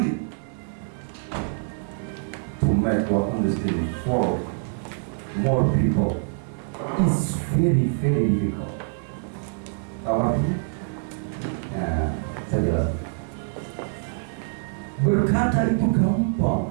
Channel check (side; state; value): left; silent; 62 dB below the other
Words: To make what understanding for more people is very difficult. Tahu artinya? Nah, saya jelas. Berkata itu